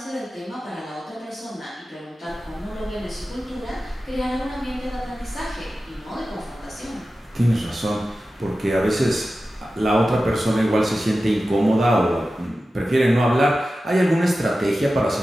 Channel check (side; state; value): both; normal; correlation 0.94